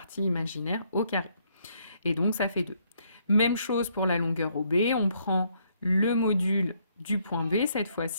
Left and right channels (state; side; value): inverted; both; correlation -0.71